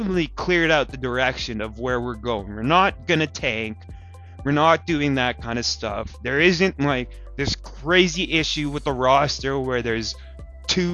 cleared out the direction of where we're going. We're not going to tank. We're not doing that kind of stuff. There isn't like this crazy issue with the roster where there's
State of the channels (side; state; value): both; identical; correlation 1.00